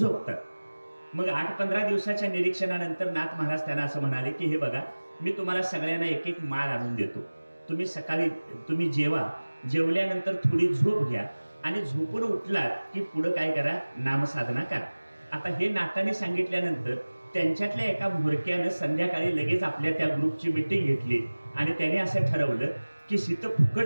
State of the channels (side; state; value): both; inverted; correlation -1.00